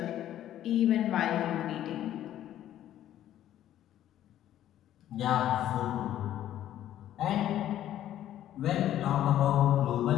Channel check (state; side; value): quieter; right; 12.1 dB